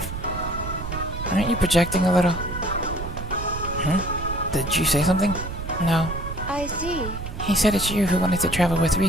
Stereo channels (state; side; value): noise; right; rumble, 8 dB below the sound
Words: Aren't you projecting a little? Did you say something? No. I see. He said it's you who wanted to travel with